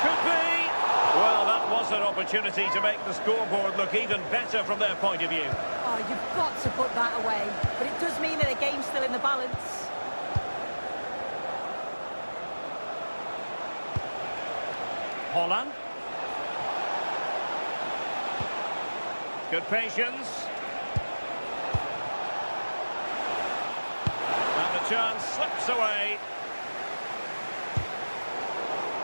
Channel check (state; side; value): inverted; both; correlation -1.00